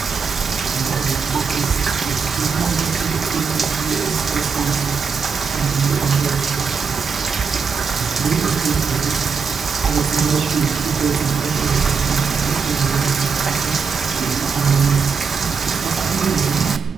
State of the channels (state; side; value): quieter; left; 5.8 dB